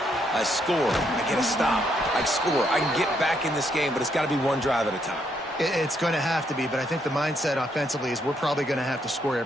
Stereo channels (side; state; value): both; normal; correlation 0.75